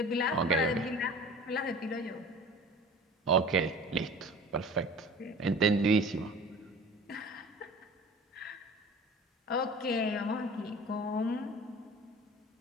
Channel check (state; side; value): normal; both; correlation 0.42